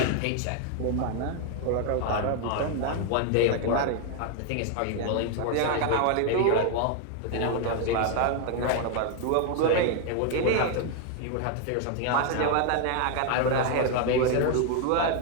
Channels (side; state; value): both; different; correlation 0.01